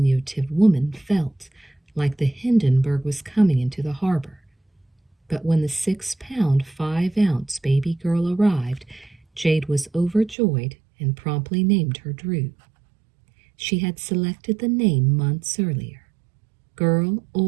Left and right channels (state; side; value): drops out; left; at 10.4 s